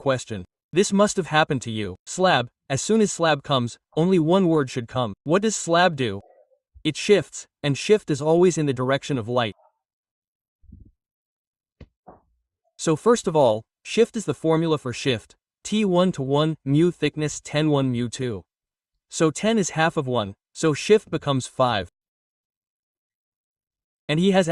This must have happened to you. Slab. As soon as slab comes, only one word should come. What does slab do? It shifts, and shift is always in the direction of light. So first of all, shift is the formula for shift. T1 to 1, mu thickness 10 1 mu 2. So 10 is half of 1, so shift becomes 5. And he has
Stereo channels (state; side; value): identical; both; correlation 1.00